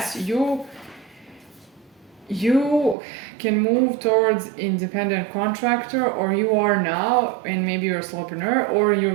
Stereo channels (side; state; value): left; drops out; at 3.0 s